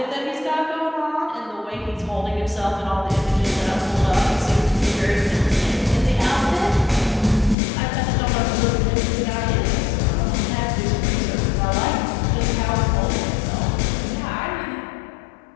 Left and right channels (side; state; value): right; drops out; at 7.6 s